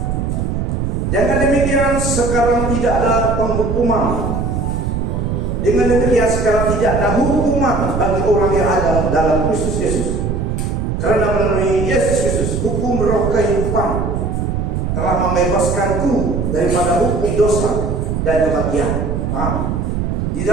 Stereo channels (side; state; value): right; noise; rumble, 1 dB below the sound